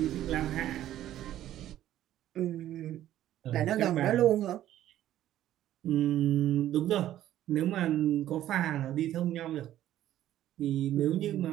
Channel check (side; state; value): left; quieter; 12.7 dB